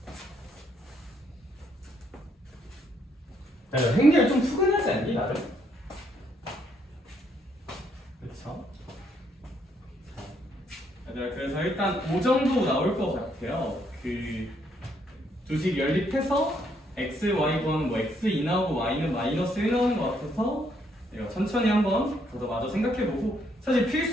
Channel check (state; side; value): normal; both; correlation 0.72